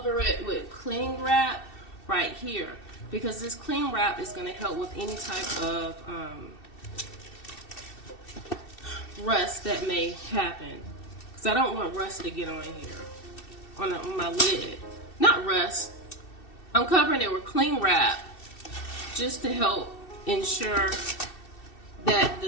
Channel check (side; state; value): right; late; 2.7 ms